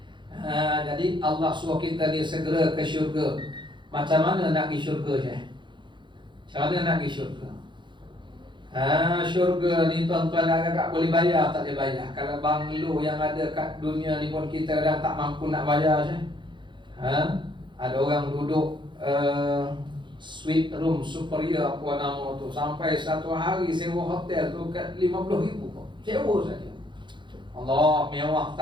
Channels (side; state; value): left; late; 0.23 ms